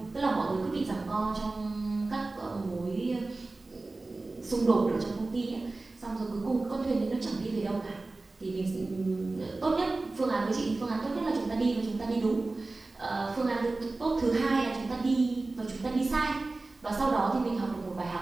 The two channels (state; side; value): quieter; left; 3.3 dB